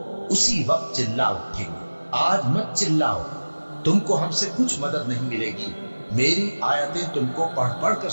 उसी वक्त चिल्ला उठेंगे, आज मत चिल्लाओ, तुमको हमसे कुछ मदद नहीं मिलेगी। मेरी आयतें तुमको पढ़ पढ़ कर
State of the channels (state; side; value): inverted; both; correlation -1.00